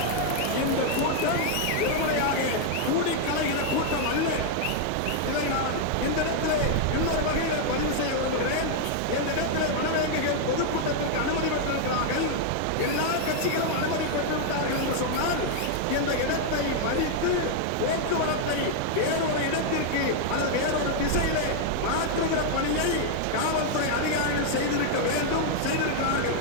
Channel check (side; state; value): both; different; correlation 0.00